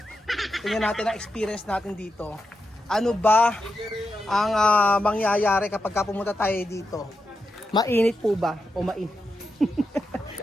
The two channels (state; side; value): normal; both; correlation 0.87